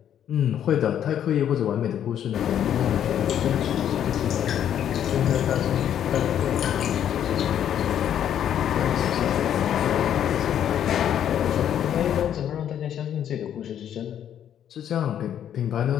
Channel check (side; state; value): right; quieter; 9.9 dB